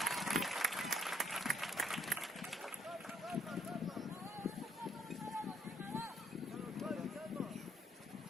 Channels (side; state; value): both; normal; correlation 0.69